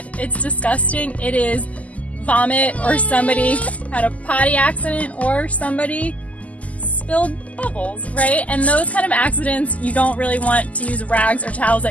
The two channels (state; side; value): late; right; 0.072 ms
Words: It's disgusting. It is vomit, or somebody had a potty accident, or somebody spilled bubbles, right? And those kind of accidents, you don't really want to use rags or towels